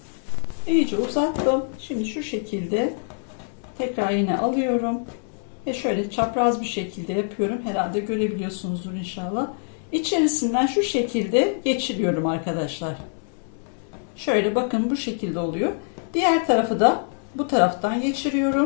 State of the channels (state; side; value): silent; right; 62 dB below the other